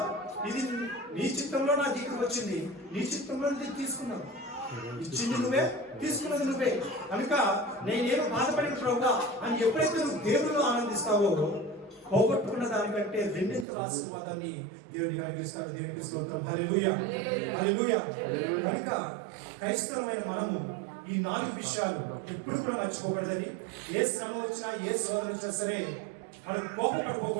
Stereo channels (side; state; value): left; drops out; at 13.7 s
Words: ఇది నీ చిత్తంలో నా దగ్గరకు వచ్చింది, నీ చిత్తంలో తీసుకున్నావు, ఇచ్చింది నువ్వే, తీసుకున్నది నువ్వే కనుక నేనేమో బాధపడిన ప్రభువా అని ఎప్పుడైతే నువ్వు దేవుళ్ళు ఆనందిస్తావో పోగొట్టుకున్న దానికంటే రెండింతల ఆశీర్వాదాన్ని దేవుడికి కలిగిస్తాడు. దేవునికి స్తోత్రం. హల్లెలూయా, హల్లెలూయా. కనుక క్రైస్తవమైన మనము ఈ 4 విషయాలు ఎప్పుడు కూడా మర్చిపోకూడదని, ఏ శ్రమ వచ్చినా ఏ శోధన వచ్చినా సరే మనం